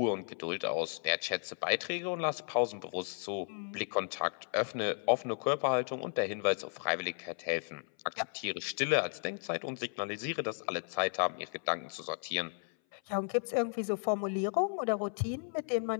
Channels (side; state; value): right; silent; 55 dB below the other